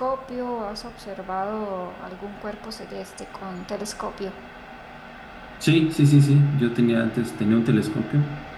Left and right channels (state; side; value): identical; both; correlation 1.00